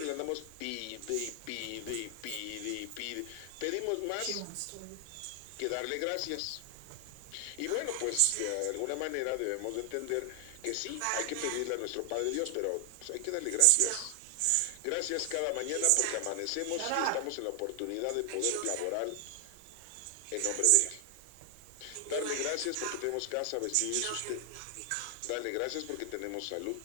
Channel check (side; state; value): both; different; correlation 0.00